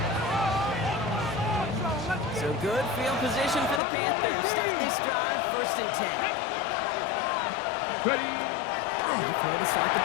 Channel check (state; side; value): drops out; right; at 3.8 s